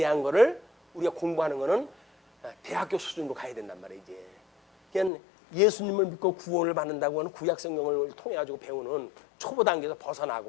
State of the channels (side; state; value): right; drops out; at 5.1 s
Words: 거를 우리가 공부하는 거는 대학교 수준으로 가야 된단 말이에요. 이제 그냥 예수님을 믿고 구원을 받는다고 하는 구약 성경을 통해 가지고 배우는 초보 단계에서